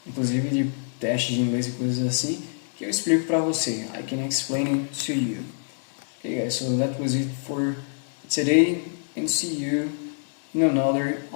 inclusive de testes de inglês e coisas assim, que eu explico para você. I can explain it to you. Okay guys, so that was it for today, and see you in another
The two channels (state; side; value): silent; right; digital silence